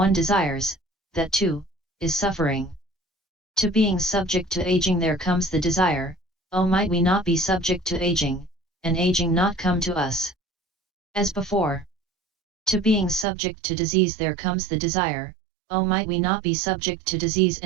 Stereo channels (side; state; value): left; drops out; at 13.2 s